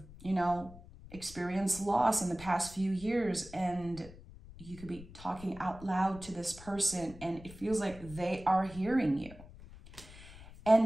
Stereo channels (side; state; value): left; noise; rumble, 17 dB below the sound